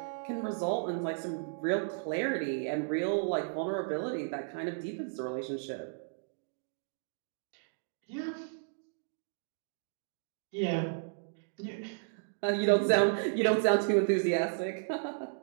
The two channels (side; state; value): left; silent; digital silence